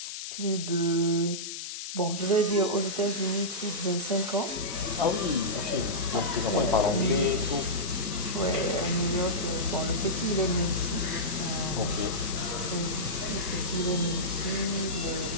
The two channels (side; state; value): left; noise; hiss, 7 dB below the sound